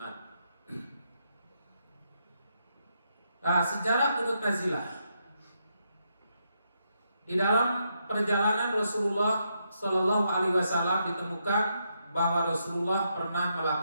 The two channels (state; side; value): inverted; both; correlation -0.80